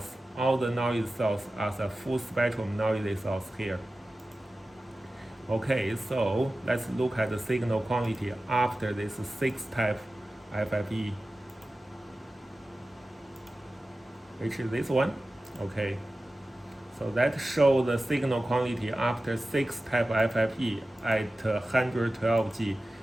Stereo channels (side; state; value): both; normal; correlation 0.95